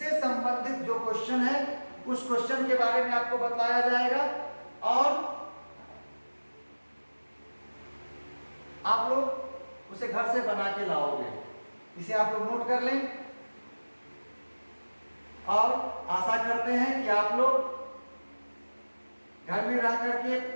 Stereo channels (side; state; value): both; inverted; correlation -1.00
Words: संबंधित जो क्वेश्चन है उस क्वेश्चन के बारे में आपको बताया जाएगा और आप लोग उसे घर से बना के लाओगे। इसे आप लोग नोट कर लें और आशा करते हैं कि आप लोग घर में रह करके